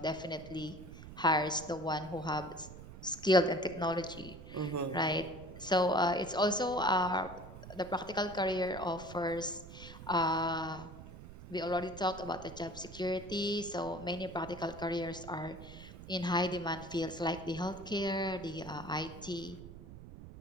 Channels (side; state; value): right; noise; rumble, 14 dB below the sound